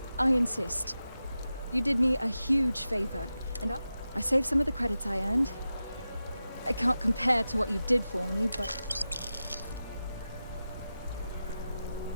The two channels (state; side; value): inverted; both; correlation -0.92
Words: I insist. You did me a huge favor, and I saved some of the credits I earned. I can't compare to what you did for me, but...